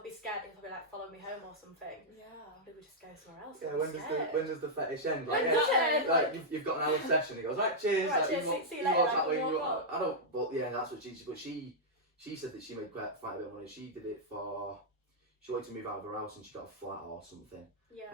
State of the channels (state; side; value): normal; both; correlation -0.07